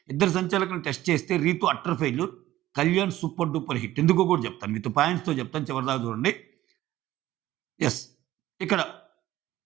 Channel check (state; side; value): quieter; left; 14.9 dB